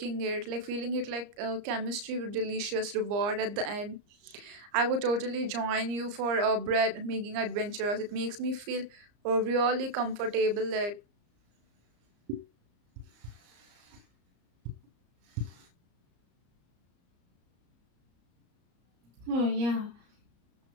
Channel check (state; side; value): late; left; 34 ms